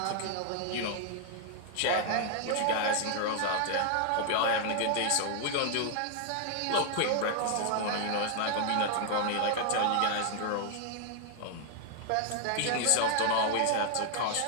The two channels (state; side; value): different; both; correlation 0.00